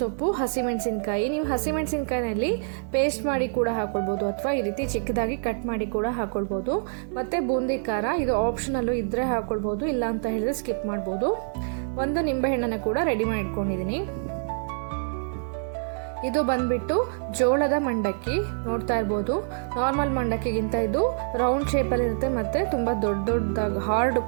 ಹಸಿಮೆಣಸಿನ್ಕಾಯಿ. ನೀವು ಹಸಿಮೆಣಸಿನ್ಕಾಯಿನಲ್ಲಿ ಪೇಸ್ಟ್ ಮಾಡಿ ಕೂಡ ಹಾಕ್ಕೊಳ್ಬೋದು, ಅಥವಾ ಈ ರೀತಿ ಚಿಕ್ಕದಾಗಿ ಕಟ್ ಮಾಡಿ ಕೂಡ ಹಾಕ್ಕೊಳ್ಬೋದು. ಮತ್ತು ಬೂಂದಿ ಖಾರ, ಇದು ಆಪ್ಷನಲ್ಲು ಇದ್ದರೆ ಹಾಕ್ಕೊಳ್ಬೋದು, ಇಲ್ಲ ಅಂತ ಹೇಳಿದ್ರೆ ಸ್ಕಿಪ್ ಮಾಡ್ಬೋದು. ಒಂದು ನಿಂಬೆಹಣ್ಣನ್ನು ಕೂಡ ರೆಡಿ ಮಾಡಿ ಇಟ್ಕೊಂಡಿದ್ದೀನಿ. ಇದು ಬಂದ್ಬಿಟ್ಟು ಜೋಳದ ಮಂಡಕ್ಕಿ. ನೋಡ್ತಾ ಇರ್ಬೋದು, ನಾರ್ಮಲ್ ಮಂಡಕ್ಕಿಗಿಂತ ಇದು ರೌಂಡ್ ಶೇಪಲ್ಲಿ ಇರುತ್ತೆ ಮತ್ತು ತುಂಬ ದೊಡ್ಡದಾಗಿ ಹಾರ್ಡ್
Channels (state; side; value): silent; left; 61 dB below the other